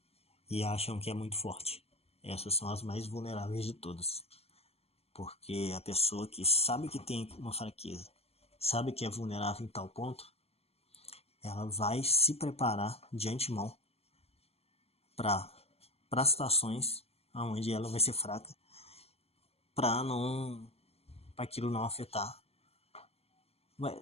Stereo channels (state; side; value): late; right; 0.29 ms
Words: e acham que é muito forte. Essas são as mais vulneráveis de todas. Porque a pessoa que sabe que tem uma fraqueza, sabe que é vulnerável em tal ponto, ela vai se preparar de antemão para situações onde ela vai ser fraca, para aquilo não afetar,